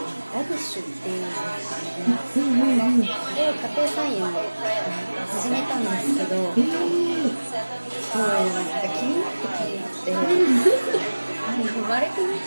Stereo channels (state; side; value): inverted; both; correlation -1.00